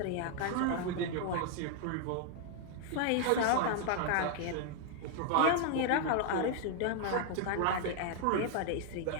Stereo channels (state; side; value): different; both; correlation 0.00